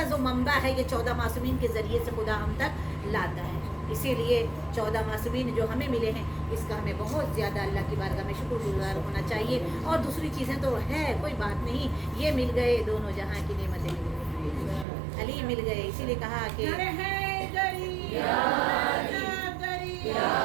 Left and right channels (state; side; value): drops out; left; at 14.9 s